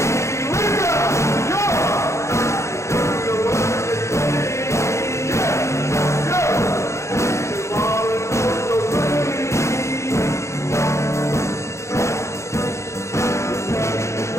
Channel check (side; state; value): right; late; 0.14 ms